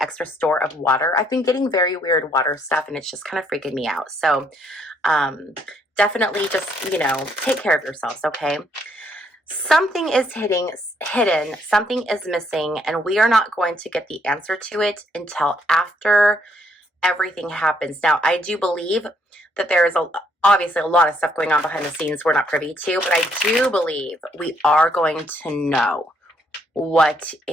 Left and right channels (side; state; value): both; normal; correlation 0.70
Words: store of water. I've been getting very weird water stuff and it's just kind of freaking me out. So definitely just, you know, take care of yourselves, okay? Something is hidden, something is missing, and we are not going to get the answer to it until after everything happens. Now, I do believe that there is obviously a lot of stuff going on behind the scenes we're not privy to, but I do believe we are going to know what